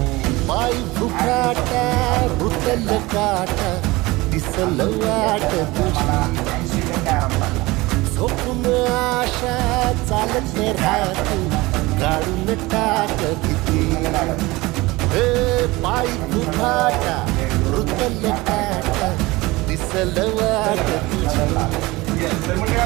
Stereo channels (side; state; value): left; quieter; 21.4 dB